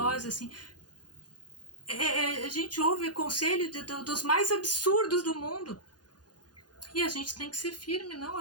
assim. A gente ouve conselho dos mais absurdos do mundo. E a gente tem que ser firme, não,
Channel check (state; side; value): late; right; 0.69 ms